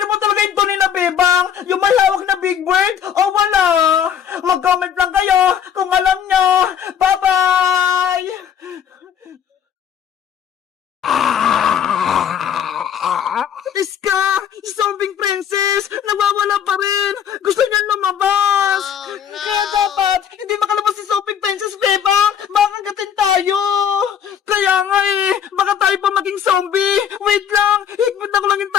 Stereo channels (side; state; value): right; quieter; 8.6 dB